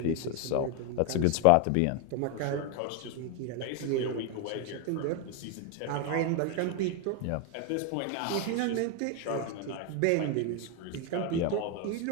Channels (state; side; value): different; both; correlation 0.01